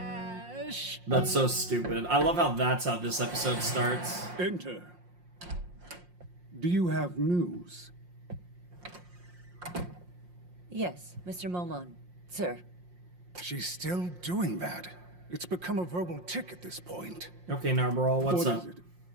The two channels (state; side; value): late; left; 5.6 ms